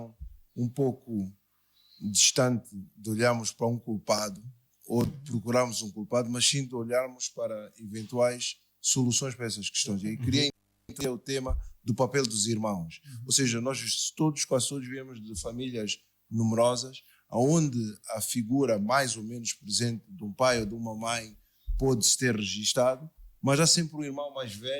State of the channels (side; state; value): both; identical; correlation 1.00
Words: um pouco distante de olharmos para um culpado ou de procurarmos um culpado, mas sim de olharmos para eventuais soluções para essas questões. E aí queria entender o tema do papel dos irmãos. Ou seja, nós todos, quase todos, viemos de famílias numerosas, onde a figura mais ou menos presente de um pai ou de uma mãe pode-se ter registado, mas há sempre um irmão mais